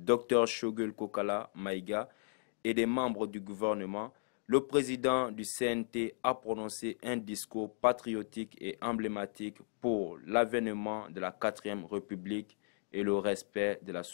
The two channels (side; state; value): right; silent; digital silence